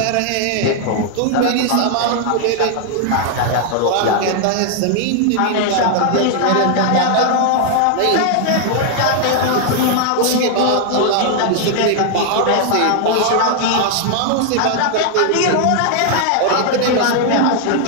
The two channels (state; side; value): different; both; correlation 0.00